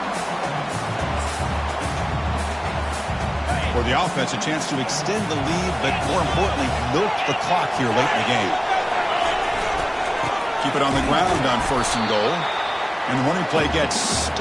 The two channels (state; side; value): identical; both; correlation 1.00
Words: For the offense, a chance to extend the lead, but more importantly, milk the clock here late in the game. Keep it on the ground on 1st and goal. And the running play gets